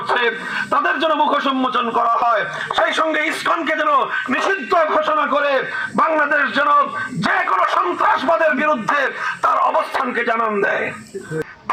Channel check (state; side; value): identical; both; correlation 1.00